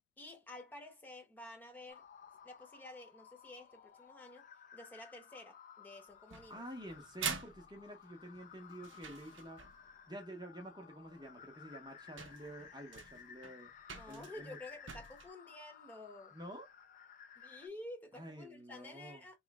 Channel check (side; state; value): both; normal; correlation 0.30